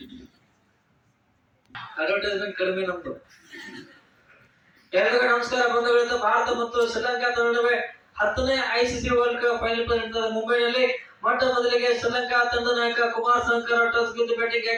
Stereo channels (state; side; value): identical; both; correlation 1.00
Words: ಅಡ್ವರ್ಟೈಸ್ಮೆಂಟ್ ಕಡಿಮೆ ನಮ್ದು. ಎಲ್ಲರಿಗೂ ನಮಸ್ಕಾರ ಬಂಧುಗಳಿಂದ. ಭಾರತ ಮತ್ತು ಶ್ರೀಲಂಕಾ ನಡುವೆ 10ನೇ ICC ವರ್ಲ್ಡ್ ಕಪ್ ಫೈನಲ್ ನಡೆದ ಮುಂಬೈನಲ್ಲಿ ಮೊಟ್ಟ ಮೊದಲಿಗೆ ಶ್ರೀಲಂಕಾ ತಂಡದ ನಾಯಕ ಕುಮಾರ್ ಸಂಗಕ್ಕರ ಟಾಸ್ ಗೆದ್ದು ಬ್ಯಾಟಿಂಗ್